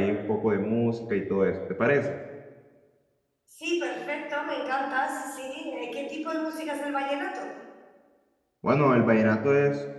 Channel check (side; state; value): both; identical; correlation 1.00